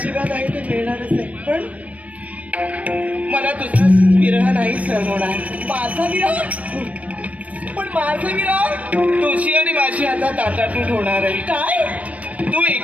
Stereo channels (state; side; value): late; left; 0.068 ms